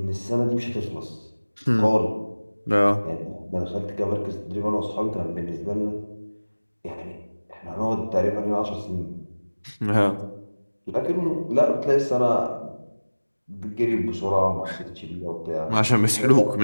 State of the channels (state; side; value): inverted; both; correlation -1.00